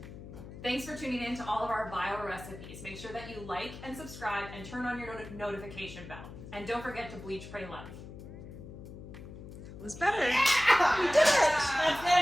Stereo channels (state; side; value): noise; left; hum, 13 dB below the sound